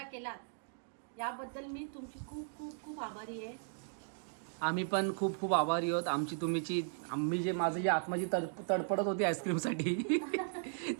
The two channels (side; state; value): left; silent; digital silence